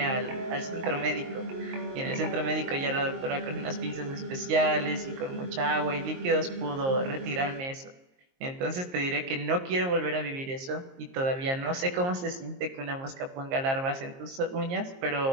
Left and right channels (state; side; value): late; left; 22 ms